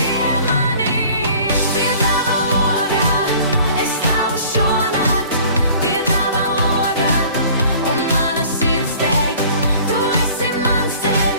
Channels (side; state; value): both; inverted; correlation -0.49